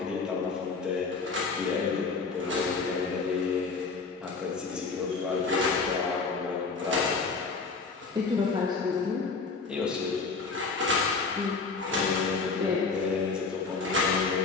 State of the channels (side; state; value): right; quieter; 4.5 dB